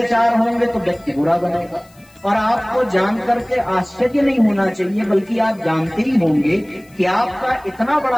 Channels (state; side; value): noise; left; hiss, 29 dB below the sound